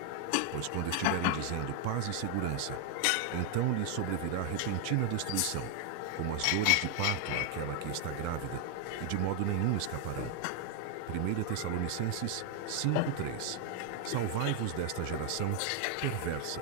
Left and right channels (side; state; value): both; different; correlation 0.00